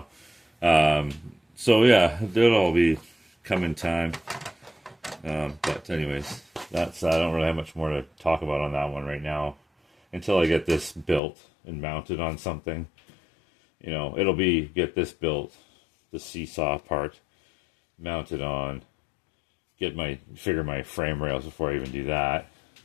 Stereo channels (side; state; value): right; drops out; at 11.2 s